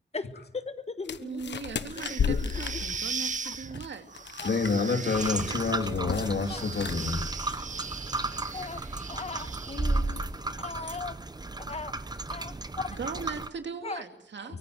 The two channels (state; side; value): normal; both; correlation 0.50